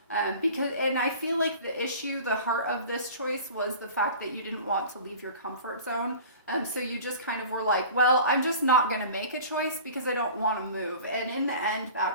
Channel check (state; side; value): inverted; both; correlation -0.40